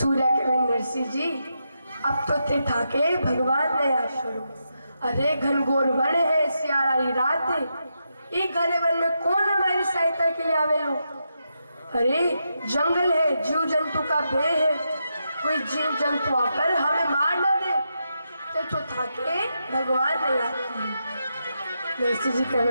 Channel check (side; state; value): both; inverted; correlation -0.84